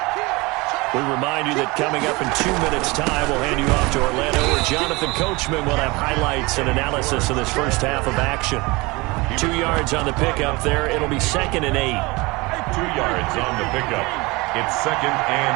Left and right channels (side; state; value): left; quieter; 24.1 dB